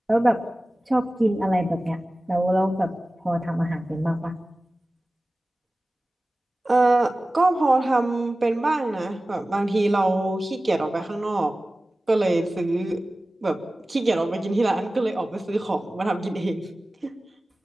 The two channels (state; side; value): normal; both; correlation 0.97